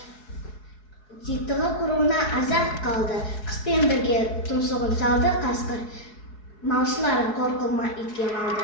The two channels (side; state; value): right; late; 4.7 ms